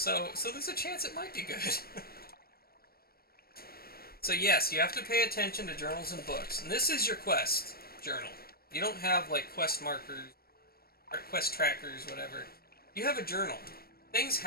there's a chance it might be good. So yes, you have to pay attention to journals and books. And this is your quest journal. You don't have like quest markers, or quest trackers, whatever. You have a journal. Things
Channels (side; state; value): right; late; 0.44 ms